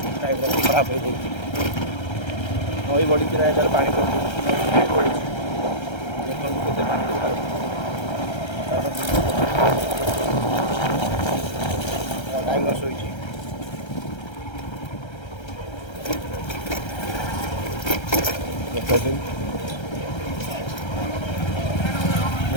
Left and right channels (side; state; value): right; late; 1.3 ms